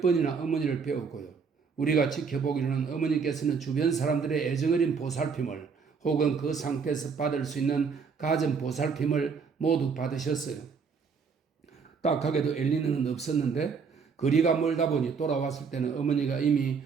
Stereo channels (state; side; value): quieter; left; 5.6 dB